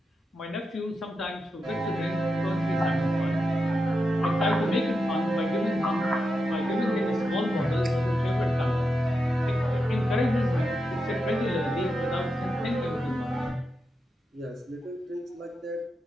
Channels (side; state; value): both; normal; correlation 0.88